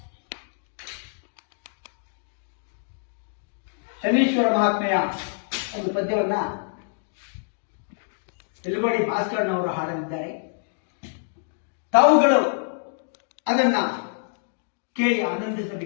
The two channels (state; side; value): silent; right; digital silence